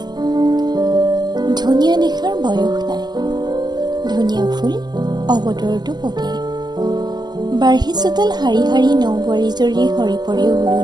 ধুনীয়া দেখাৰ বয়স নাই, ধুনীয়া ফুল অৱতৰতো পকে। বাঢ়ি চোতাল শাৰী শাৰী নৌবোৱাৰী জৰী সৰি পৰে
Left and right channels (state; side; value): late; left; 0.20 ms